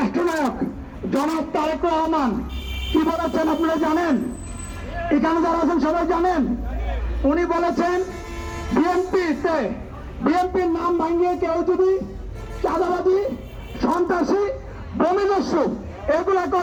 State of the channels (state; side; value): identical; both; correlation 1.00